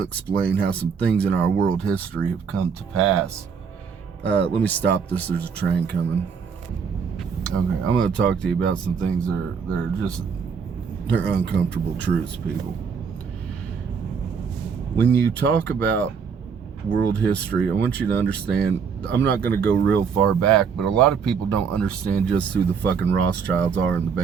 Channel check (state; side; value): quieter; left; 6.3 dB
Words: how some things in our world history have come to pass. Let me stop this. There's a train coming. Okay, I'm going to talk to you about some things they're uncomfortable truths, people. When you talk about world history, I want you to understand, I'm not going to go real far back, but a lot of people don't understand just who the fucking Rothschilds are in the